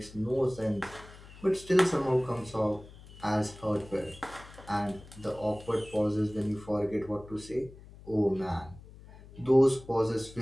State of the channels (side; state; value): left; noise; hum, 19 dB below the sound